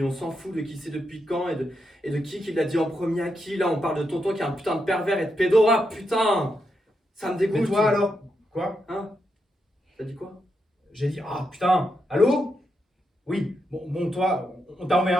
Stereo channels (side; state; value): both; normal; correlation 0.83